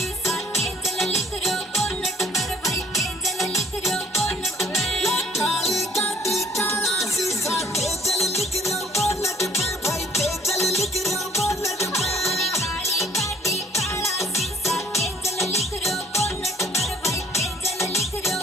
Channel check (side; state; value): both; normal; correlation 0.57